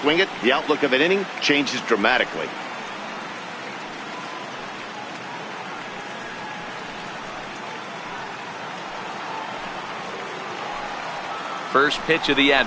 it, the outlook of an inning changes dramatically. First pitch of the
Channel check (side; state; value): both; identical; correlation 1.00